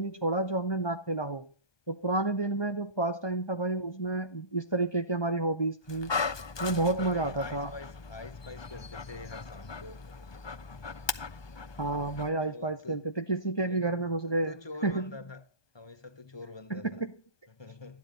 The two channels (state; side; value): late; right; 1.2 ms